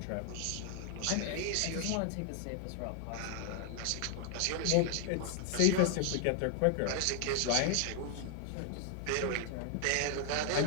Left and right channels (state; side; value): different; both; correlation 0.00